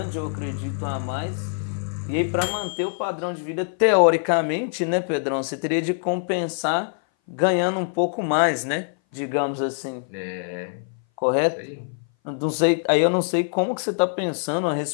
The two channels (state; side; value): silent; right; 59 dB below the other